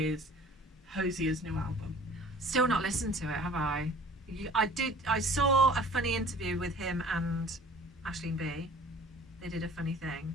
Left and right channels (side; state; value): both; normal; correlation 0.49